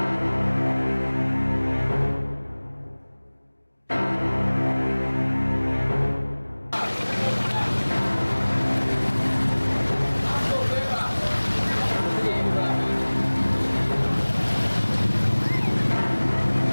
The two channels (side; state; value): both; inverted; correlation -1.00